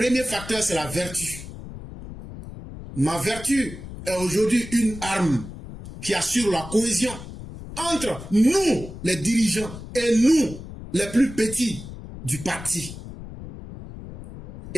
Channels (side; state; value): left; noise; rumble, 12 dB below the sound